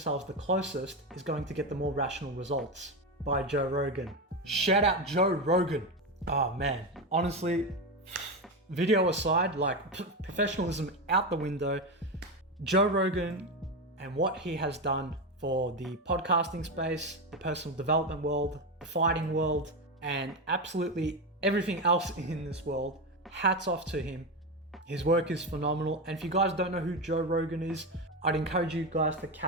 the closest is going to get the more rational results. By Joe Rogan. Shout out Joe Rogan. Oh man, honestly, video aside, like professionalism out the window, Joe Rogan and what he has done for the podcasting space, the personal development world, the fighting world, and absolutely everything else in this world. Hats off to him. His work is phenomenal. And if you guys don't know who Joe Rogan is, I'd encourage you guys to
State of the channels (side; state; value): both; normal; correlation 0.14